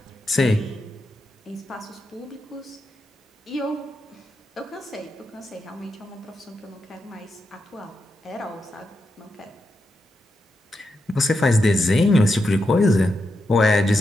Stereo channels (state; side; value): normal; both; correlation 0.86